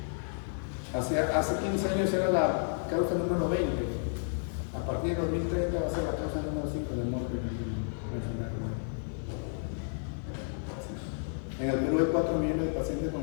Hace 15 años era la causa número 20. A partir de 2030 va a ser la causa número 5 de muerte en la enfermedad renal. En el Perú hay 4 millones de pacientes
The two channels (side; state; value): right; silent; digital silence